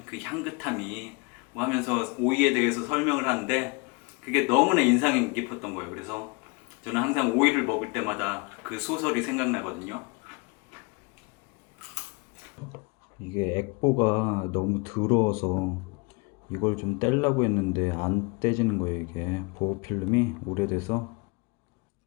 그 향긋함이 뭐 하면서 오이에 대해서 설명을 하는데 그게 너무나 인상이 깊었던 거예요. 그래서 저는 항상 오이를 먹을 때마다 그 소설이 생각나거든요. 이게 액보가 너무 더러워서 이걸 좀 떼려고 했는데 안 떼지는 거예요. 이게 보호필름이 오래돼서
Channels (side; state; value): right; quieter; 29.7 dB